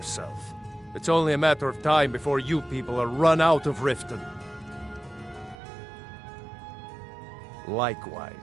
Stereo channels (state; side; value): drops out; left; at 5.6 s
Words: It's only a matter of time before you people are run out of Riften.